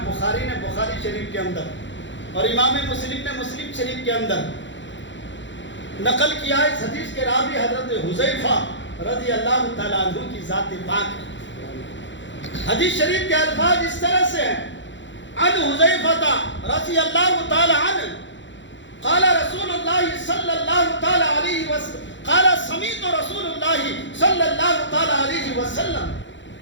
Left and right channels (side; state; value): right; late; 0.54 ms